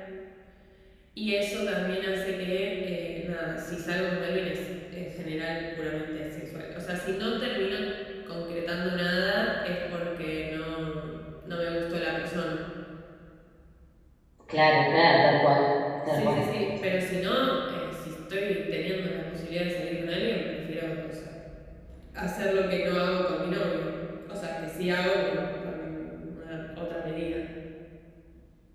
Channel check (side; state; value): both; identical; correlation 1.00